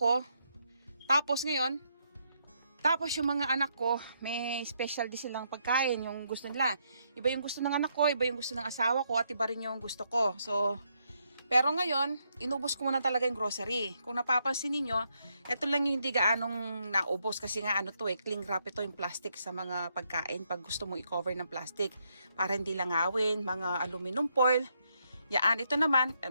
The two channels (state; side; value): inverted; both; correlation -0.77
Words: Tapos ngayon, yung mga anak ko, may special din silang pagkain, yung gusto nila. Iba yung gusto ng anak ko, iba yung gusto ng asawa ko, at iba rin yung gusto ko. So, pero ngayon, inubos ko muna talaga yung grocery. Kung napapansin niyo, ito lang yung hindi gaanong naubos kasi nga cling wrap ito yung plastic sa mga pagkain pag gusto mong i-cover ng plastic para hindi langawin, mga aluminum foil. Yan, ito naman,